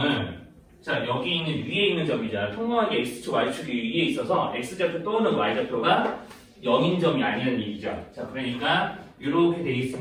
자, 여기 있는 위에 있는 점이잖아. 평범하게 X축, Y축이 위에 있어서 X좌표 또는 Y좌표가 0인 점이 아니라는 얘기죠. 자, 그러니까 이렇게 돼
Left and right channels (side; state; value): both; identical; correlation 1.00